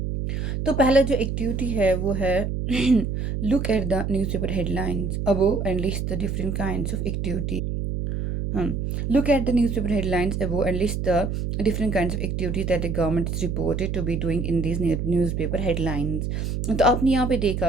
तो पहला जो एक्टिविटी है वो है look at the newspaper headlines above and list the different kinds of activity. Look at the newspaper headlines above and list the different kinds of activities that the government is reported to be doing in these newspaper headlines. तो आपने यहाँ पे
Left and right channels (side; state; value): right; noise; hum, 2 dB below the sound